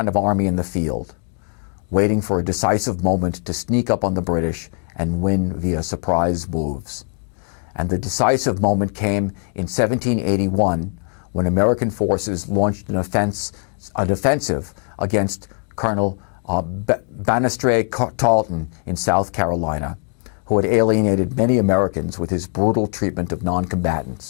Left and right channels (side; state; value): right; quieter; 38.6 dB